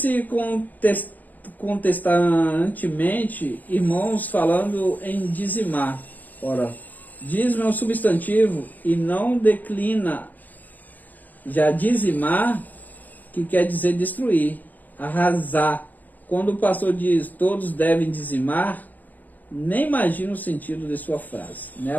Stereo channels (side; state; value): right; late; 0.083 ms